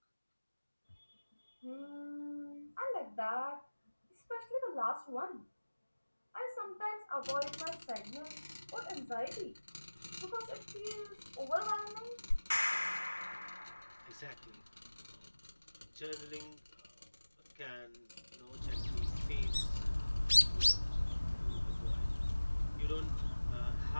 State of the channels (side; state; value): both; inverted; correlation -1.00